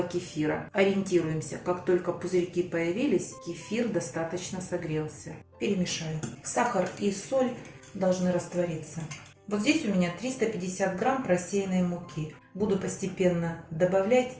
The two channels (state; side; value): identical; both; correlation 1.00